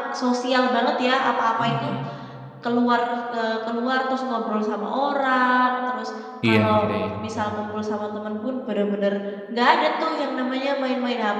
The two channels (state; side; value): identical; both; correlation 1.00